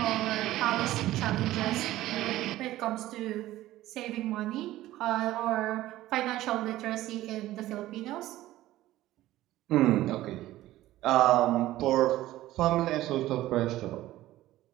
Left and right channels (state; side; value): quieter; left; 15.5 dB